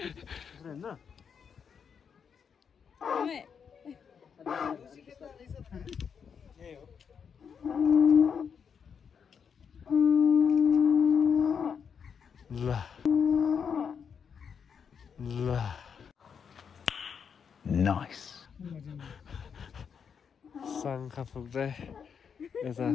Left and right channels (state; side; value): quieter; right; 6.8 dB